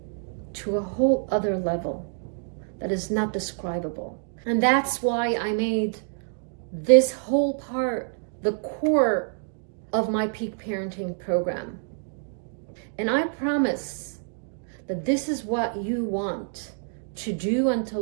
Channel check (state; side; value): silent; left; digital silence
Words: to a whole other level that is not describable. And that's why I made this whole part the core of my Peak Parenting program. And I promise that this is what you want to do and to